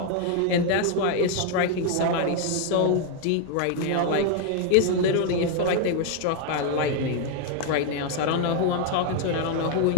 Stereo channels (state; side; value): different; both; correlation 0.00